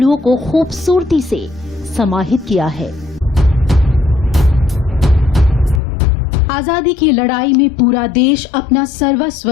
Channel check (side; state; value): right; drops out; at 5.8 s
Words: को खूबसूरती से समाहित किया है। आजादी की लड़ाई में पूरा देश अपना सर्वस्व